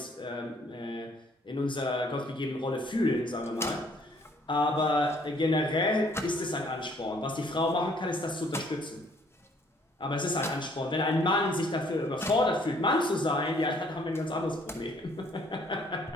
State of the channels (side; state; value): both; normal; correlation 0.62